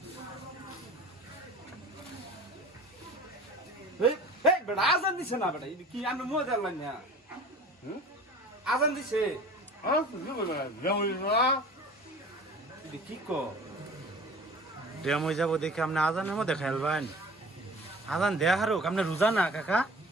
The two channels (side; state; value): both; normal; correlation 0.43